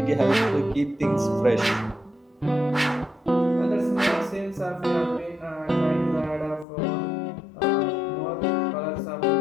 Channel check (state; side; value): drops out; right; at 6.7 s